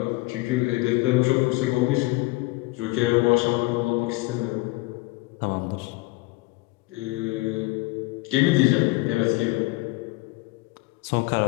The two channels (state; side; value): quieter; right; 22.1 dB